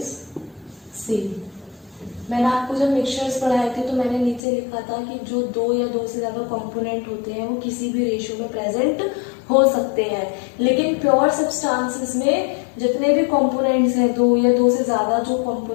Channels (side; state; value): right; drops out; at 4.4 s